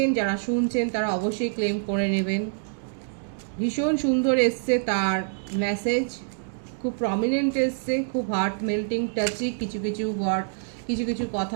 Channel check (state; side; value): silent; left; digital silence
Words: যারা শুনছেন তারা অবশ্যই ক্লেম করে নেবেন। ভীষণ সুন্দর এসছে তার মেসেজ, খুব প্রমিনেন্ট এসছে, খুব হার্ট মেল্টিং টাচি কিছু কিছু ওয়ার্ড, কিছু কিছু